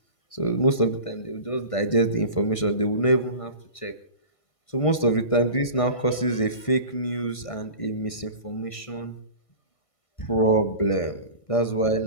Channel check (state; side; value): late; right; 1.6 ms